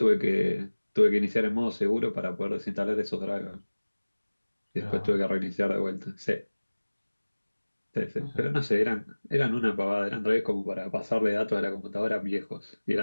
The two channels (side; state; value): both; inverted; correlation -1.00